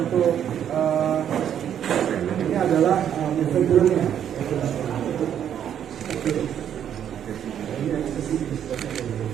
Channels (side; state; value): left; quieter; 9.5 dB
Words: untuk ini adalah filmnya. Ini eksesi